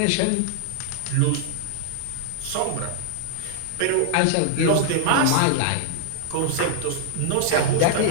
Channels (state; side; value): different; both; correlation -0.01